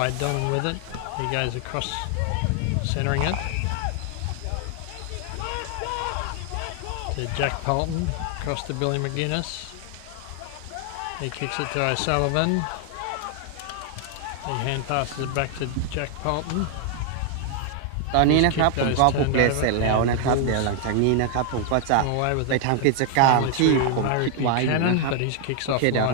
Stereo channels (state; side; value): different; both; correlation 0.00